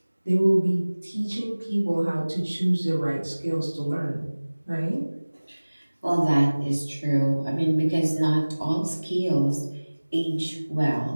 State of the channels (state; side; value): inverted; both; correlation -1.00